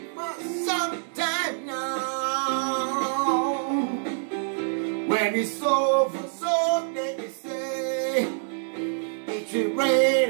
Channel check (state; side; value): silent; left; 61 dB below the other